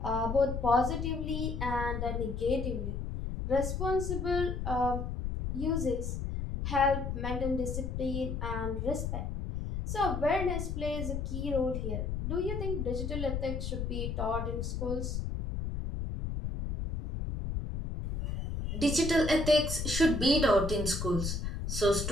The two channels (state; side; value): noise; left; rumble, 3 dB below the sound